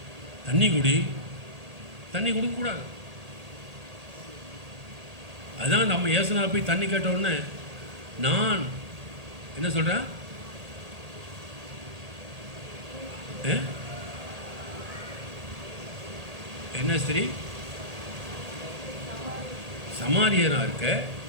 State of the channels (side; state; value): left; late; 1.8 ms